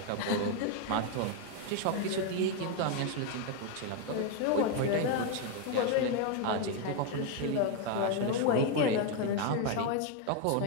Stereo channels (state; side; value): different; both; correlation 0.01